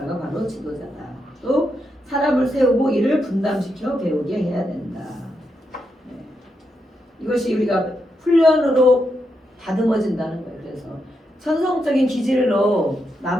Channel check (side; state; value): both; normal; correlation 0.83